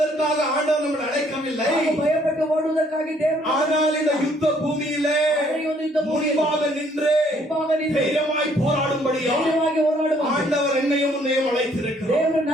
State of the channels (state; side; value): normal; both; correlation 0.64